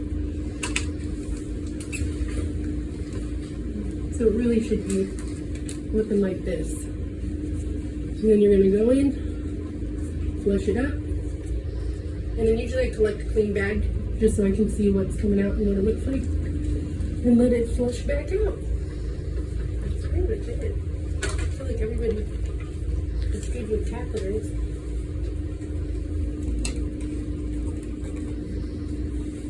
So it really should be looking like this. And then you're gonna go in, flush it up, and then usually I collect a clean bag just so I can see what's coming out and what it looks like, and let it flush back out. That's pretty much it. I feel like everybody is good with catheters.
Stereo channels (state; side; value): identical; both; correlation 1.00